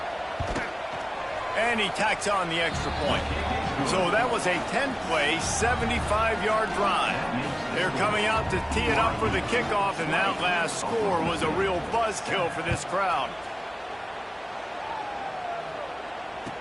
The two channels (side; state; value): both; identical; correlation 1.00